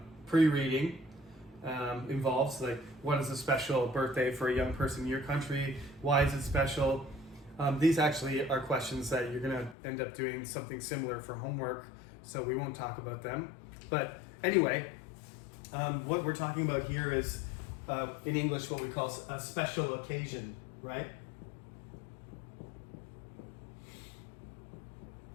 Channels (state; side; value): drops out; right; at 9.8 s